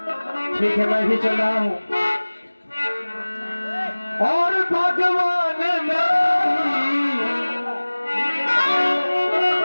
ठीक है, मैं भी चल रहा हूं। और भगवान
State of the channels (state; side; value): inverted; both; correlation -1.00